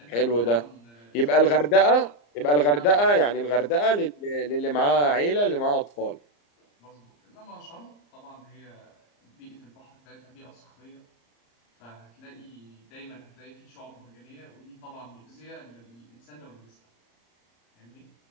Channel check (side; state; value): right; late; 34 ms